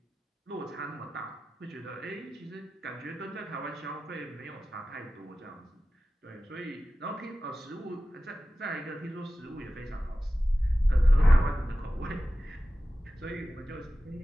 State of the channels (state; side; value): normal; both; correlation 0.95